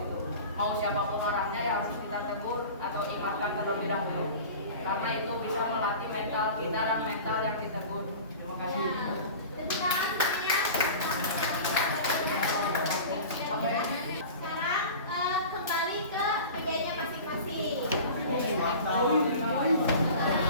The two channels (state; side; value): inverted; both; correlation -0.37